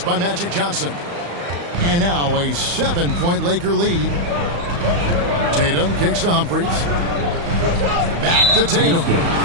by Magic Johnson. And now a 7-point Laker lead. Tatum kicks to Humphries. Back to Tatum.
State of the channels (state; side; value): late; left; 35 ms